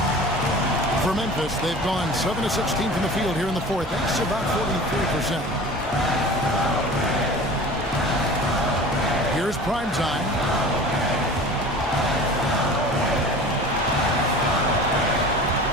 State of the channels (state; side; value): normal; both; correlation 0.39